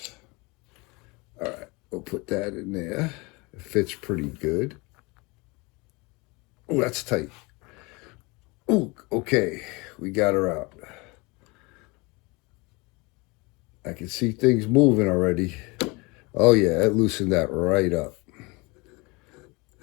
All right, we'll put that in there. It fits pretty good. Oh, that's tight. Oh, okay, we got her out. I can see things moving already. Oh yeah, it loosened that right up.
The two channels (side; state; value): right; quieter; 26.5 dB